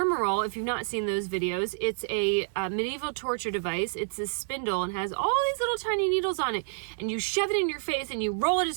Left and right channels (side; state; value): left; silent; digital silence